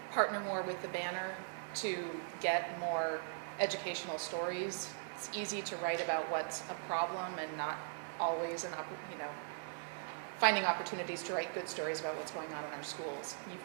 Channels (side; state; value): left; silent; digital silence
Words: partner more with the banner to get more educational stories. It's easy to write about what's a problem and not always finding opportunities to write good stories about what's going on in our schools. You've